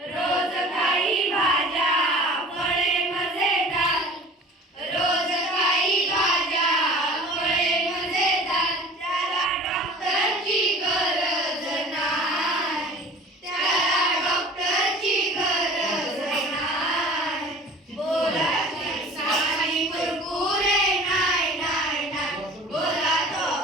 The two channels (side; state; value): both; normal; correlation 0.44